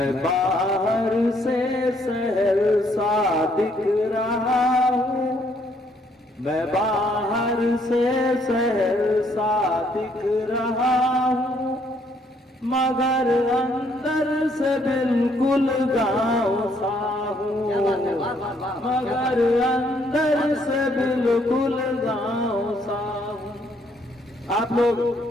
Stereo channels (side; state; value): both; normal; correlation 0.68